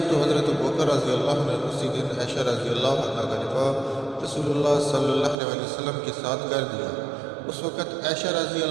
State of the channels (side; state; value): left; drops out; at 5.4 s